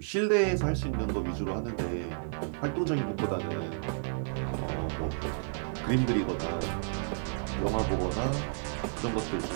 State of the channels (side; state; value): left; silent; 57 dB below the other